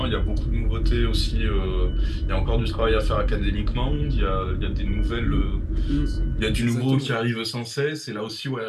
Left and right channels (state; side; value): identical; both; correlation 1.00